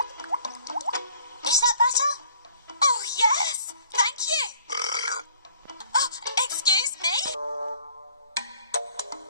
Is that better? Oh, yes! Thank you! Oh, excuse me?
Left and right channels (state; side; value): inverted; both; correlation -0.56